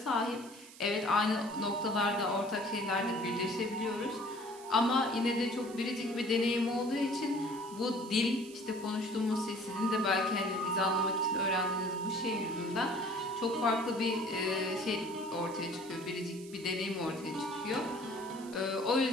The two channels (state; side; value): noise; right; hiss, 19 dB below the sound